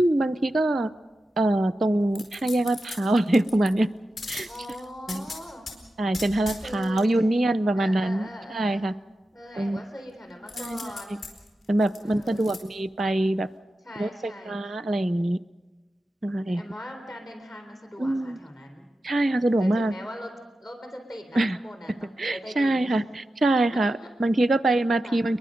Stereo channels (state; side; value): normal; both; correlation 0.92